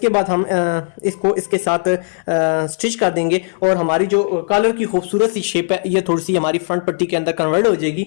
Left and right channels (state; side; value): silent; right; 68 dB below the other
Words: बाद हम इसको इसके साथ स्टिच कर देंगे और हमारी जो कॉलर की खूबसूरत सी शेप है ये थोड़ी सी हमारी फ्रंट पट्टी के अंदर कन्वर्ट हो